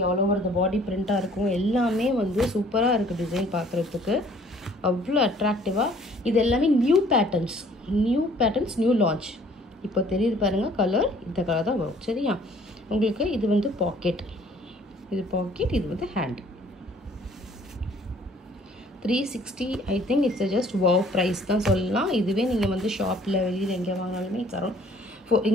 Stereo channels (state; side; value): normal; both; correlation 0.57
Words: ஆல் ஓவர் த பாடி பிரிண்ட்டாக இருக்கும், எல்லாமே வந்து சூப்பராக இருக்குது. டிசைன் பார்க்குறதுக்கு அவ்வளோ அட்ராக்டிவாக. இது எல்லாமே நியூ பேட்டர்ன்ஸ், நியூ லான்ச். இப்போ தெரியுது பாருங்கள் கலர், இந்த கலர் தான் வரும். சரியா? உங்களுக்கு இது வந்து பாக்கெட், இது பாக்கெட், இது வந்து hand. 360. I think it's just wow price தான் சொல்லலாம். இதுவே நீங்கள் வந்து ஷாப்பில் வெளியில் எங்கே வாங்கினாலுமே இட்ஸ் அரௌண்ட்